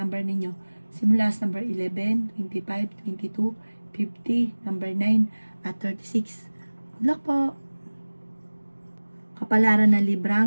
ninyo simula sa number 11, 25, 22, 50, number 9 at 36. Good luck po! Kapalaran ng Libra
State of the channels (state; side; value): inverted; both; correlation -1.00